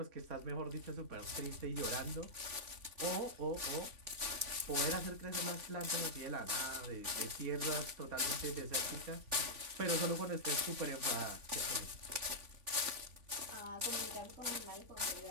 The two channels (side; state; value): left; late; 3.5 ms